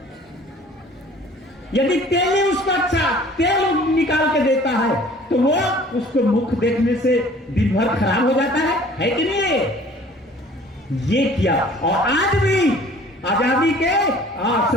यदि तेली उसको अच्छा तेल निकाल के देता है तो वो उसको मुख देखने से दिन भर खराब हो जाता है कि नहीं? ये किया। और आज भी आजादी के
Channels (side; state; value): both; normal; correlation 0.50